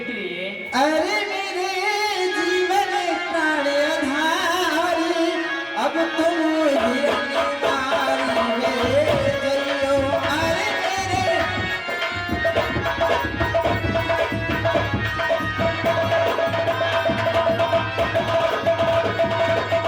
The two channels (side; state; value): both; identical; correlation 1.00